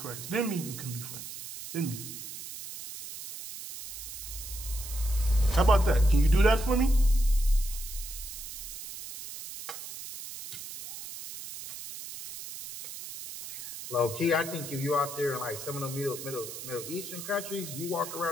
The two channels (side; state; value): right; noise; hiss, 10 dB below the sound